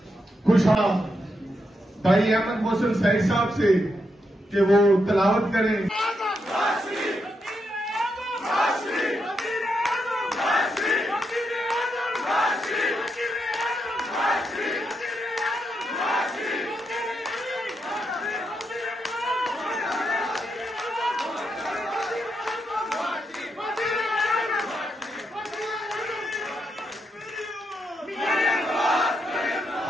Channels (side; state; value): both; normal; correlation 0.82